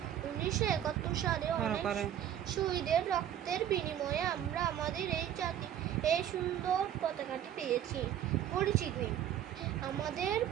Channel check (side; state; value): left; quieter; 10.5 dB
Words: 1971 সালে অনেক শহীদের রক্তের বিনিময়ে আমরা আমাদের এই সুন্দর পতাকাটি পেয়েছি। পরিচিতি: আমাদের